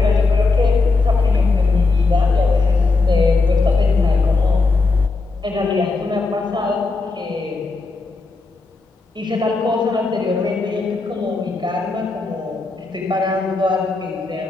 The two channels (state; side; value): quieter; right; 3.8 dB